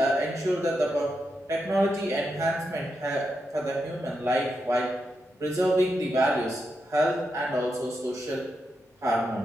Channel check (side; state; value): both; normal; correlation 0.85